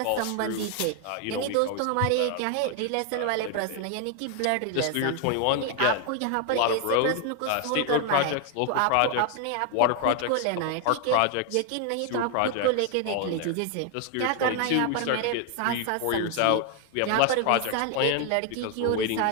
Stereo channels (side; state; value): both; different; correlation 0.01